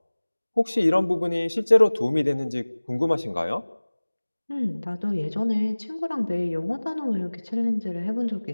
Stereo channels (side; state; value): both; inverted; correlation -1.00